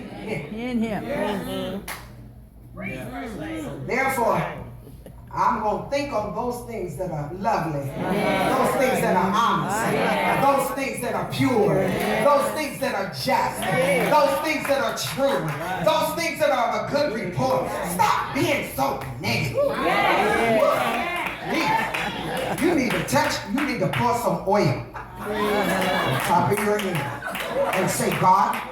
him. Therefore, I'm going to think on those things that are lovely, those things that are honest, those things that are pure, those things that are just, those things that are true, those things that are of a good report. Stop being so negative. You need to you need to pour some oil on top of your head and say, God,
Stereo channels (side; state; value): both; identical; correlation 1.00